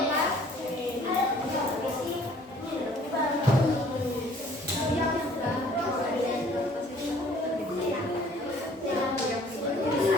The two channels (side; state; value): both; normal; correlation 0.56